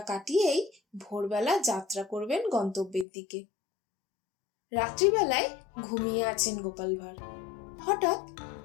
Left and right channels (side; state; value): right; drops out; at 3.1 s